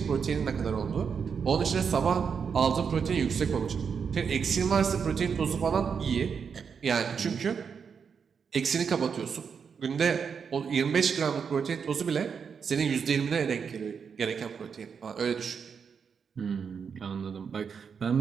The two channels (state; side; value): quieter; left; 6.4 dB